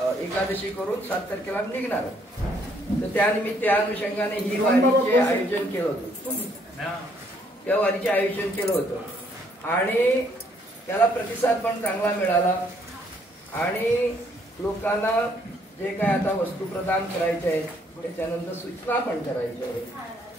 एकादशी करून 7 तारखेला निघणार. तर त्यानिमित्त त्या अनुषंगाने ही वारीचे आयोजन केलं होतं. त्या वारीचे आयोजन केलं होतं आणि त्याला प्रतिसाद पण चांगला मिळाला. आणि लोकांना जे काय आता वस्तू प्रदान करायचे आहेत त्याच्यानंतर सूचना पण करायच्या आहेत.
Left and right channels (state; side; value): normal; both; correlation 0.67